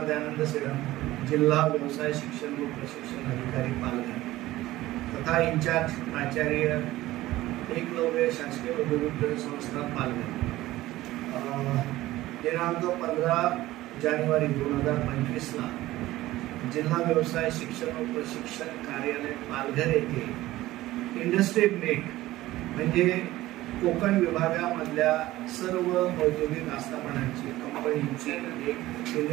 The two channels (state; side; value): quieter; left; 16.6 dB